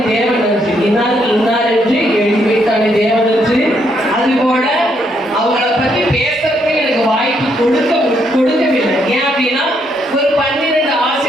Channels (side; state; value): both; normal; correlation 0.74